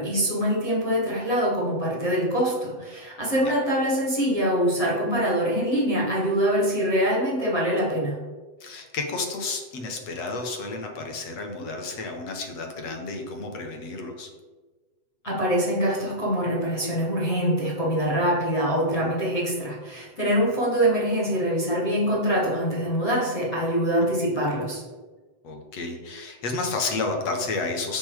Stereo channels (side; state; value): right; late; 7.9 ms